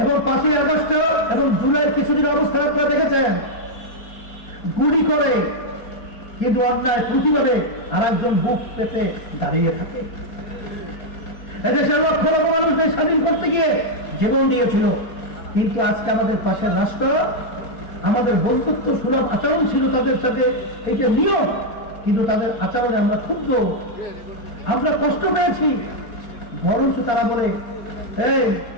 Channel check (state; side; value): late; right; 4.3 ms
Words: এবং 5ই আগস্ট এবং জুলাই কিছুদিন অবস্থা আপনারা দেখেছেন, গুলি করে কিন্তু অন্যায় প্রতিবাদে আর একজন বুক পেতে দাঁড়িয়ে থাকে। এদেশের লক্ষ লক্ষ মানুষদের স্বাধীন করতে গিয়ে জীবন দিয়েছিল, কিন্তু আজকে আমাদের পাশে রাষ্ট্র, আমাদের বন্ধুত্ব সুলভ আচরণ ছিল তাদের সাথে, এটা নিয়ম, কিন্তু তাদের আচরণে আমরা ক্ষুব্ধ, আমরা কষ্ট পেয়েছি। বরঞ্চ তারা বলে এই